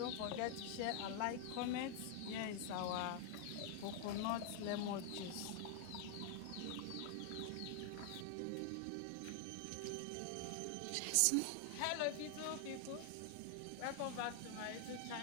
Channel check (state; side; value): different; both; correlation 0.00